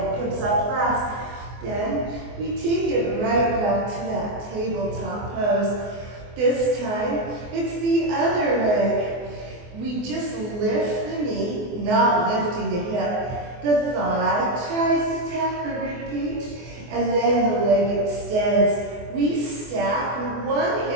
comes up last. Then we take it right back to that tabletop pose. This time, it's the other leg. We just lift the knee, not lifting the hip. The thigh tries to tap the rib cage, and then the leg extends. We stack one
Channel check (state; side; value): late; left; 24 ms